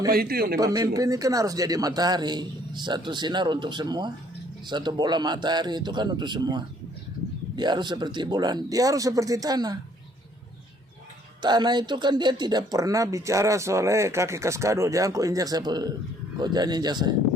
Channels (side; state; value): both; normal; correlation 0.62